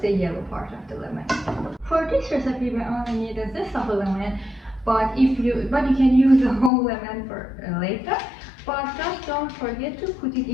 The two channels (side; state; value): right; drops out; at 6.7 s